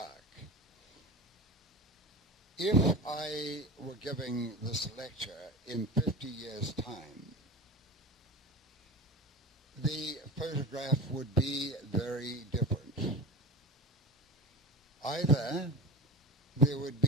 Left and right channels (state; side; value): normal; both; correlation 0.28